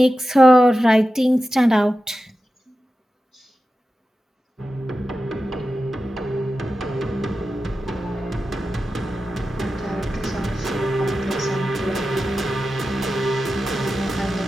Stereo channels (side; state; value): both; normal; correlation 0.93